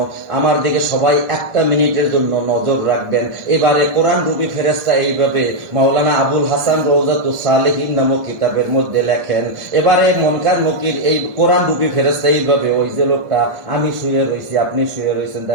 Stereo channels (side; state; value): left; late; 1.2 ms